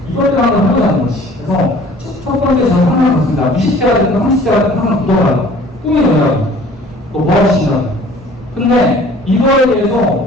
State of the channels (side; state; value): both; normal; correlation 0.50